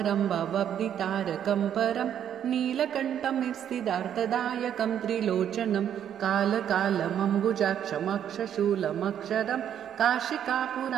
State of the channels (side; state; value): left; quieter; 9.6 dB